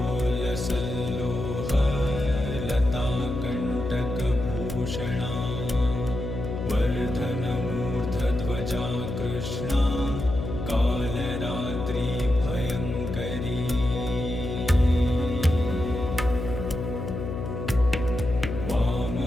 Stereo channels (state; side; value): noise; left; hum, 5 dB below the sound